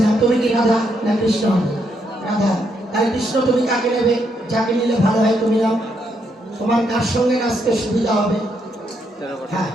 নাও, তুমি কি রাধা না কৃষ্ণ হবে? রাধা। তাহলে কৃষ্ণ তুমি কাকে নেবে? যাকে নিলে ভালো হয় তুমি নাও, তোমার কার সঙ্গে নাচতে সুবিধা হবে? হ্যাঁ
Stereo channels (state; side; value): normal; both; correlation 0.77